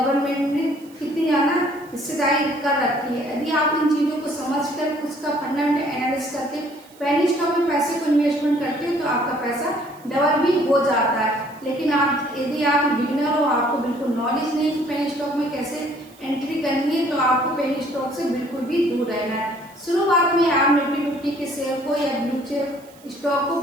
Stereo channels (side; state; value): right; noise; hiss, 26 dB below the sound